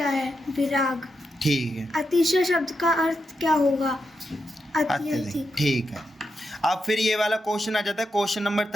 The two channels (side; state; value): both; normal; correlation 0.86